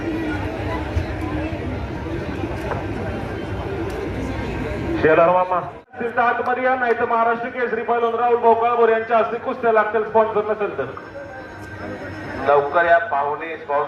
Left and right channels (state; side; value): identical; both; correlation 1.00